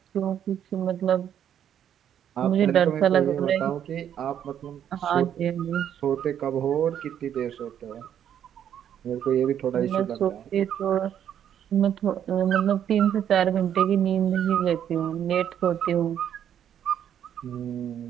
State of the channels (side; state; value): left; quieter; 9.6 dB